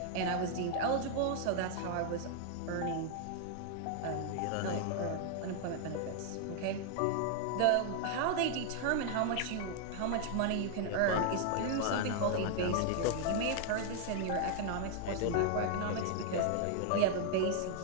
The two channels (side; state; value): both; different; correlation 0.00